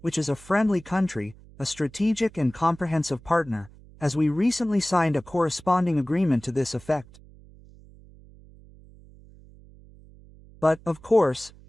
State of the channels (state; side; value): noise; right; hum, 23 dB below the sound